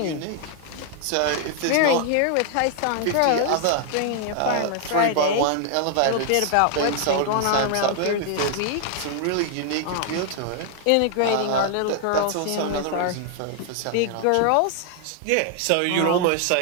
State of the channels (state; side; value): different; both; correlation 0.00